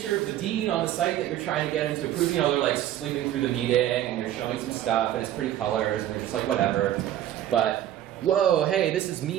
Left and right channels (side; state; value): left; quieter; 12.1 dB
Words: of the dean on the site that you're trying to get him to approve, you know, they're like sleeping through the meeting and you're showing some stuff and it's pretty colors and they're just like, whatever. But, whoa, hey, this is